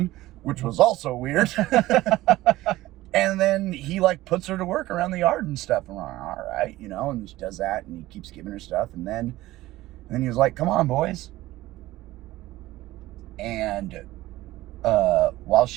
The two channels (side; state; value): left; quieter; 16.9 dB